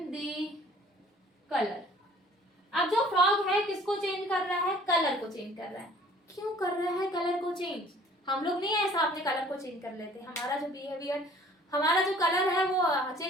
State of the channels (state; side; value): normal; both; correlation 0.53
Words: the colour. अब जो फ्रॉग है किसको चेंज कर रहा है, कलर को चेंज कर रहा है। क्यों कर रहा है कलर को चेंज, हम लोग नहीं ऐसा अपने कलर को चेंज कर लेते, हमारा जो बिहेवियर, हमारा जो कलर है वो